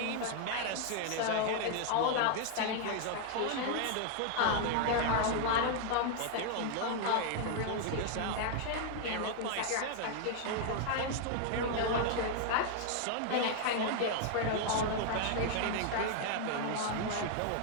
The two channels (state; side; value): different; both; correlation 0.00